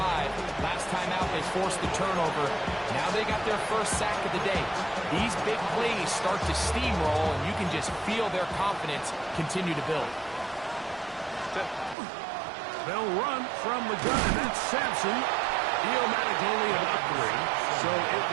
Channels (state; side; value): drops out; left; at 12.0 s